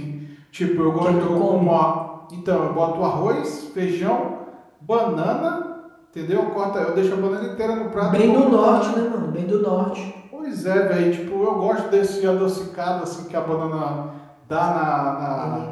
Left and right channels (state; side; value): identical; both; correlation 1.00